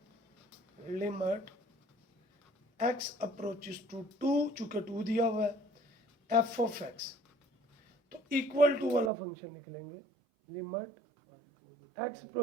लिमिट x अप्रोचेस टू 2, चूंकि 2 दिया हुआ है, f ऑफ x, तो इक्वल टू वाला फंक्शन लिख लेंगे, limit x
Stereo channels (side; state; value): left; drops out; at 9.1 s